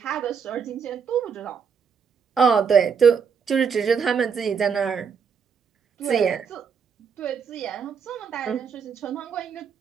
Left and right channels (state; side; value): quieter; left; 6.4 dB